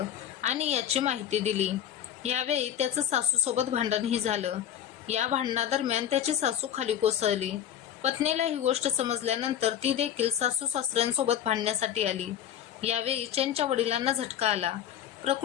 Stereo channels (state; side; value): quieter; right; 10.2 dB